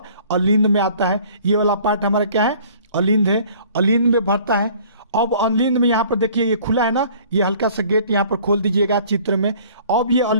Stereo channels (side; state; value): both; inverted; correlation -0.52